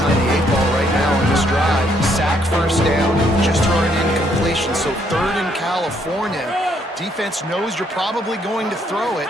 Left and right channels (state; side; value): normal; both; correlation 0.70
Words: the 8 ball right now on this drive. Sack first down, just throwing an incompletion. So 3rd in California. Defense knows you're probably going to throw it.